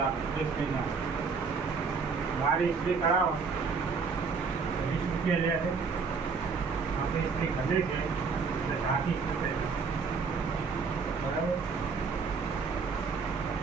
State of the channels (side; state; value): left; quieter; 5.1 dB